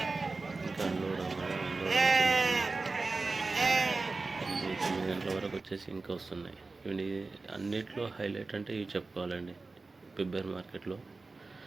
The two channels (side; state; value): left; quieter; 3.7 dB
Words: ఇంకా అన్లోడ్ 9 గంటల వరకు వచ్చేసి ఇంకా వస్తున్నాయి. ఇవి అన్నిట్లో హైలైట్ అంటే ఇవి చెప్పుకోవాలండి. ఫిబ్రవరి మార్కెట్లో